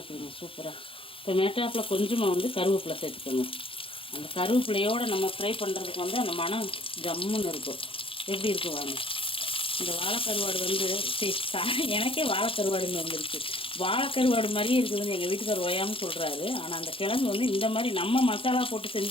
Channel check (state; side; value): late; right; 0.26 ms